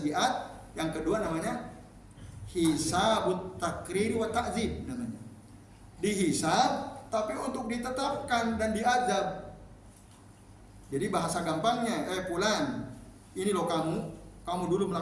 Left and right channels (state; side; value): identical; both; correlation 1.00